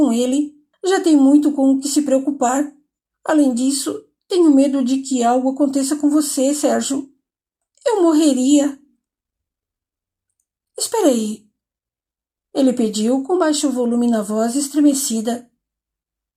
ele. Já tem muito com o que se preocupar. Além disso, tenho medo de que algo aconteça com você, Sérgio. Eu morreria. Espera aí. Ele pediu com baixo volume na voz estremecida.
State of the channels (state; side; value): identical; both; correlation 1.00